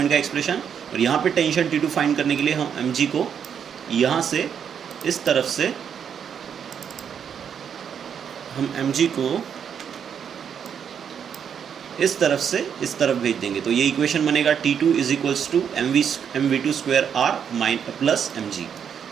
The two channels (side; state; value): left; quieter; 7.8 dB